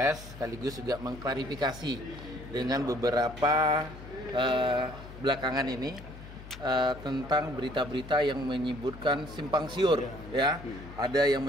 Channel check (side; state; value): left; noise; hum, 15 dB below the sound